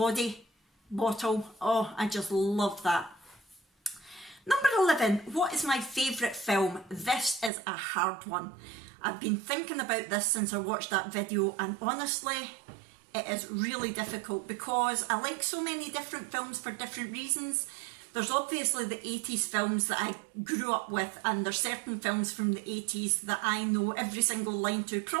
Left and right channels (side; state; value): left; drops out; at 7.5 s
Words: bottle. Oh, I just love that. Number 11, what is my favourite film? This is a hard one. I've been thinking about this since I watched that video, and honestly, it is really difficult because I like so many different films for different reasons. There's obviously the 80s films that I grew up with, and there's certain films from the 80s that I know every single line to,